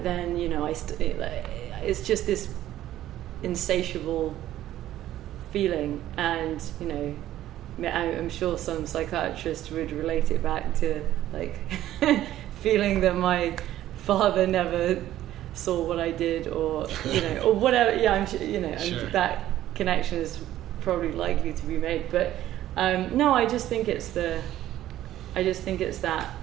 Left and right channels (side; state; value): left; quieter; 13.3 dB